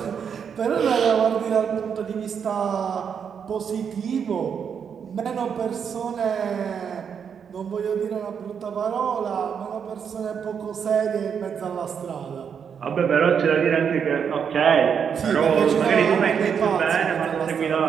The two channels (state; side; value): quieter; left; 7.2 dB